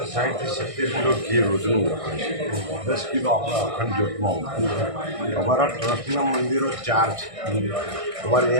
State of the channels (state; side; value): late; left; 1.6 ms